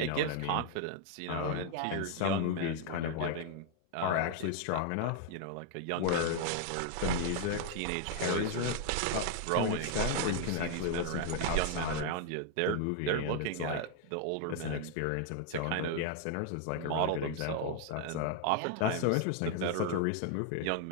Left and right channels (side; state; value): both; different; correlation 0.00